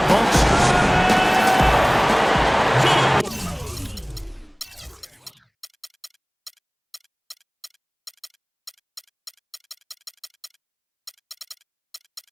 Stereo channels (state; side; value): identical; both; correlation 1.00